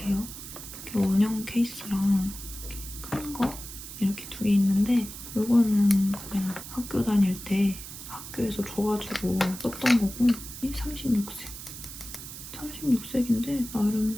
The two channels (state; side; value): noise; right; hiss, 12 dB below the sound